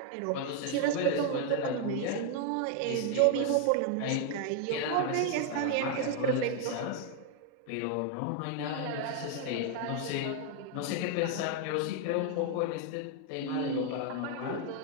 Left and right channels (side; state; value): both; different; correlation 0.00